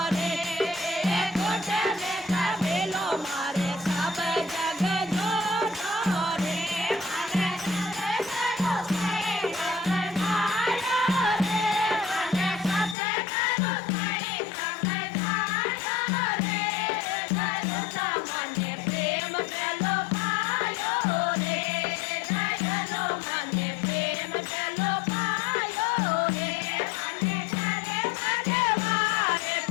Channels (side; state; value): right; drops out; at 13.0 s